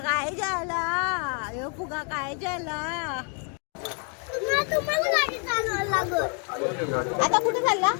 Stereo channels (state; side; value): quieter; right; 39.9 dB